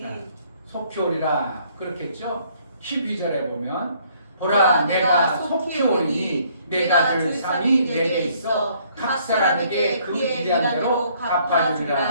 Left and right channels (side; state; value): both; inverted; correlation -0.64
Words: 속히 오리라 그렇겠죠. 12절에 보면 보라 내가 속히 오리니 내가 줄 상이 내게 있어 각 사람에게 그의 일한 대로